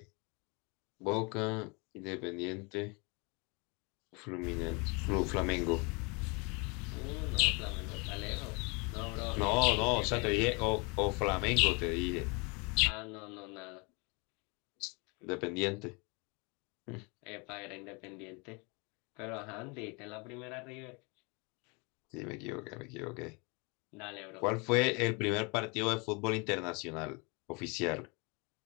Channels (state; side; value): quieter; right; 30.4 dB